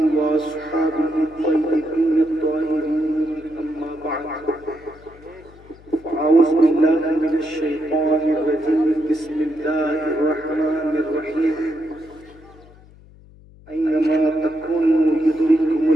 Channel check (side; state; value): left; noise; hum, 24 dB below the sound